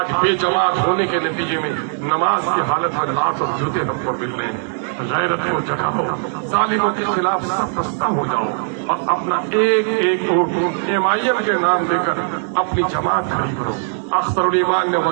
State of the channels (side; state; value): left; silent; digital silence